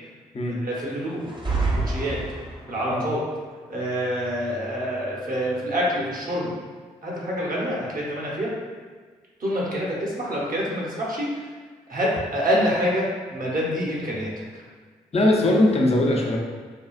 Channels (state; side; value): normal; both; correlation 0.64